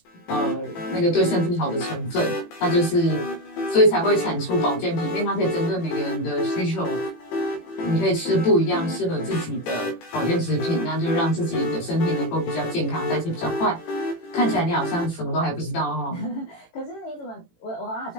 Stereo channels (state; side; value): late; right; 18 ms